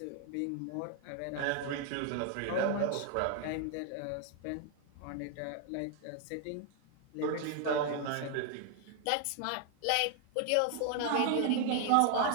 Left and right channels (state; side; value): different; both; correlation 0.00